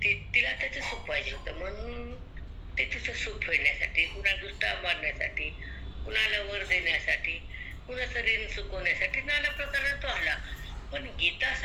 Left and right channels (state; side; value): identical; both; correlation 1.00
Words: तिला त्याचं सुख पाहिजे होतं म्हणून ते तिचं सुख फेडण्यासाठी, कुणा दुष्टा मारण्यासाठी, कुणाला वर देण्यासाठी, कुणाचं ऋण चुकवण्यासाठी नाना प्रकारे तो आला. पण गीता